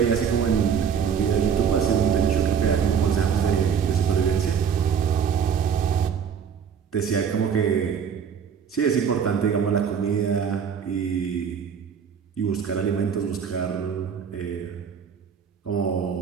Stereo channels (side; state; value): left; quieter; 7.3 dB